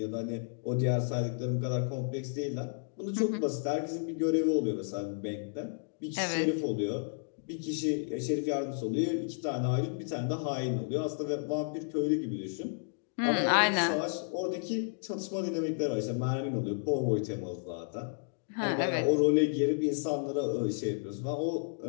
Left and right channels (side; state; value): right; silent; digital silence